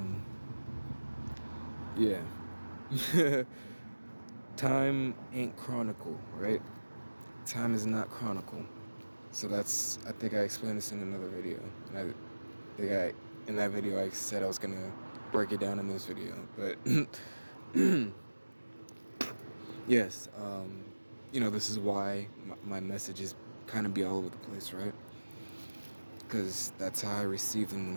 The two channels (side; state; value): both; inverted; correlation -1.00